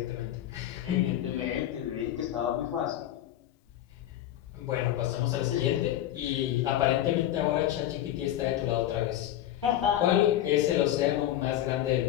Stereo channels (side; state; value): right; quieter; 12.5 dB